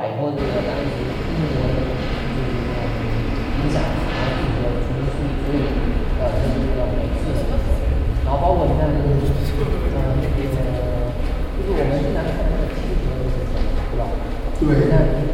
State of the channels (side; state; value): both; identical; correlation 1.00